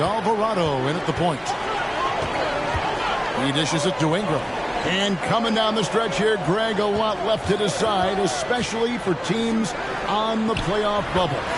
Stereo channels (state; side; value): identical; both; correlation 1.00